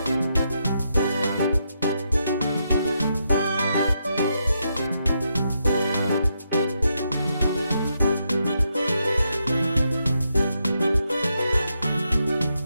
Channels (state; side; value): inverted; both; correlation -0.81